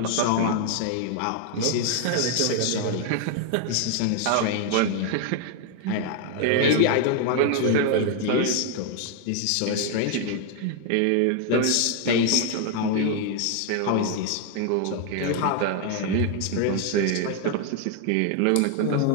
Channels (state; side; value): different; both; correlation 0.00